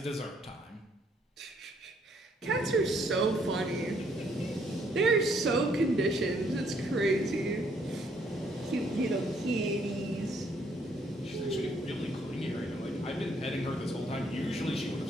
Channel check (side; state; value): both; normal; correlation 0.68